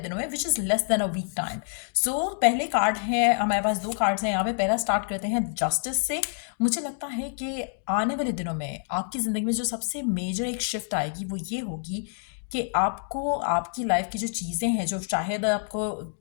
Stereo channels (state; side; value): silent; right; digital silence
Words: में, which is less than a week time. So पहले कार्ड है, हमारे पास दो कार्ड्स हैं यहाँ पे। पहला स्टार्ट करते हैं जस्टिस से। मुझे लगता है कि आने वाले दिनों में आपकी ज़िंदगी में जो सबसे मेजर एक शिफ्ट आएगी वो ये होगी कि आपको आपकी लाइफ की जो चीज़ें हैं, जो शायद आपको